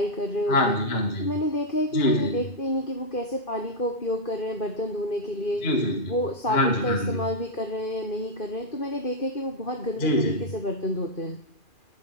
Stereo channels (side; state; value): right; late; 2.4 ms